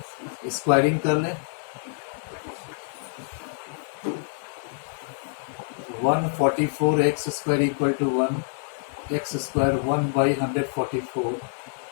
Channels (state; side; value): silent; right; digital silence